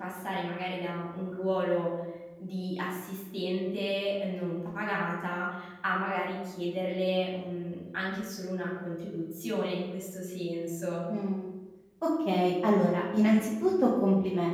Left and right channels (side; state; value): both; identical; correlation 1.00